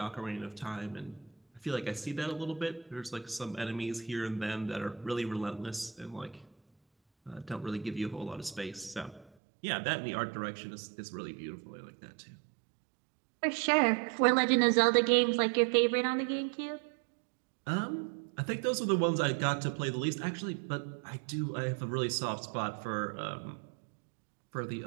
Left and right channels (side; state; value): left; drops out; at 9.3 s